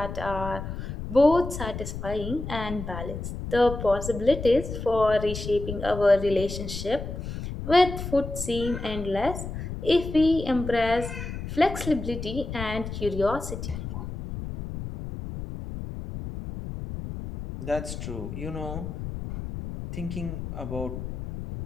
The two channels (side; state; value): left; noise; rumble, 7 dB below the sound